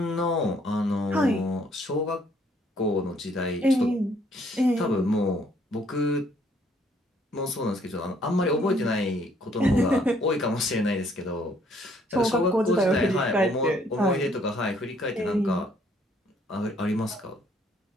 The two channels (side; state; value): both; normal; correlation 0.65